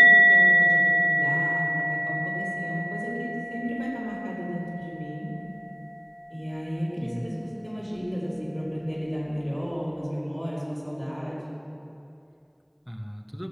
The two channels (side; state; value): both; identical; correlation 1.00